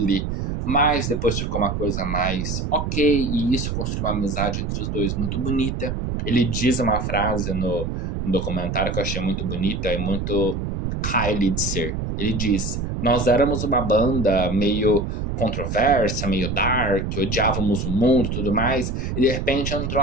mas depois ficou uma coisa mais ok, e isso construiu uma amizade entre os dois muito bonita. Ele diz uma frase no documentário que eu achei muito bonita e muito Kylie de ser. Ele diz: nós éramos uma banda meio controversa, meio dark, odiávamos o mundo e tudo mais, e de repente entrou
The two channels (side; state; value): right; noise; rumble, 3 dB below the sound